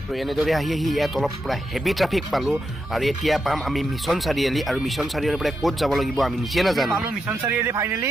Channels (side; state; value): both; normal; correlation 0.85